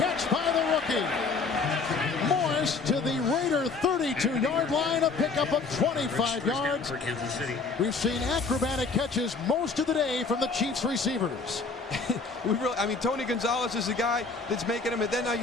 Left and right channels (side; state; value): right; quieter; 4.3 dB